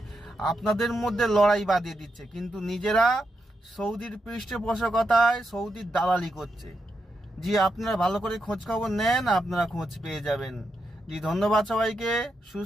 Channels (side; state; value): both; normal; correlation 0.84